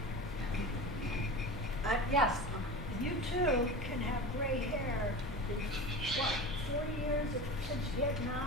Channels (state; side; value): normal; both; correlation 0.31